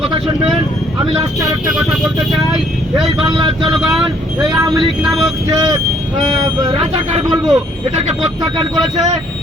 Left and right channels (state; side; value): normal; both; correlation 0.64